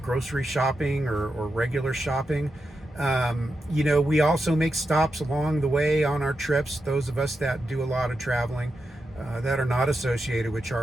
shopping or regular shopping. We also make stops along the way on our trips. Those of us that do a lot of traveling that are not associated with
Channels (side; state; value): both; normal; correlation 0.88